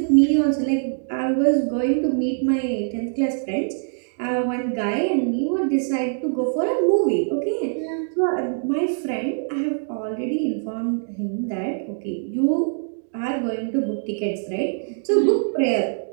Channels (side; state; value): left; silent; digital silence